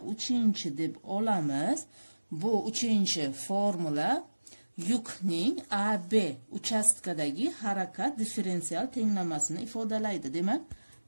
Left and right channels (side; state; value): both; inverted; correlation -1.00